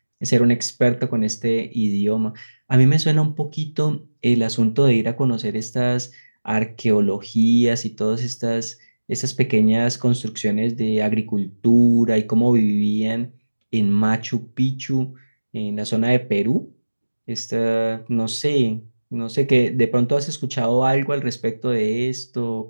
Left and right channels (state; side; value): inverted; both; correlation -1.00